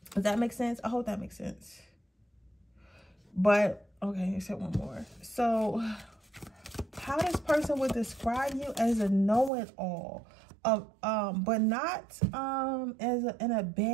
Does that make sense? I hope that makes sense. But okay, except one more. So how this person would describe you as a know-it-all, but not in a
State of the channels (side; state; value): left; drops out; at 9.5 s